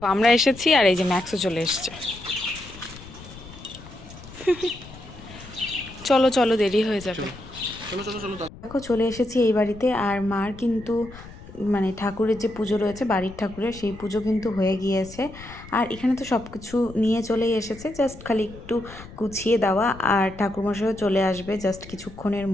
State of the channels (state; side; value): noise; left; rumble, 17 dB below the sound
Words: তো আমরা এসেছি, আর এই যে ম্যাক্সও চলে এসছে। চলো চলো, দেরি হয়ে যাবে। দেখো চলে এসেছি এই বাড়িতে, আর মার কিন্তু মানে ঠাকুরের যে পুজো রয়েছে, বাড়ির ঠাকুরের, সেই পুজো কিন্তু হয়ে গিয়েছে। আর এখানে তো সব কিছু নিয়ে চলেই এসেছে, জাস্ট খালি একটু গুছিয়ে দেওয়া। আর ঠাকুরমশাইও চলে আসবে জাস্ট কিছুক্ষণের